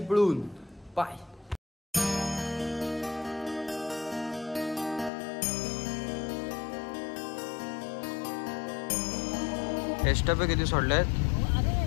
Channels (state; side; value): drops out; right; at 5.1 s